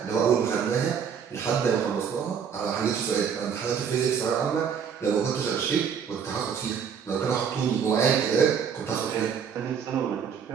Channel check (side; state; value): left; quieter; 7.2 dB